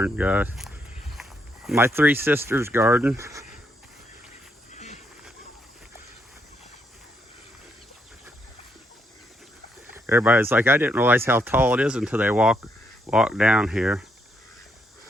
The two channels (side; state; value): both; normal; correlation 0.76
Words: guys. My three sisters' garden. Everybody's like, I didn't realize how tall it is until they walk down here.